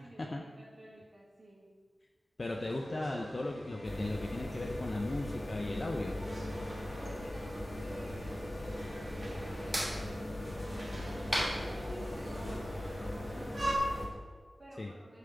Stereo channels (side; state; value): both; normal; correlation 0.96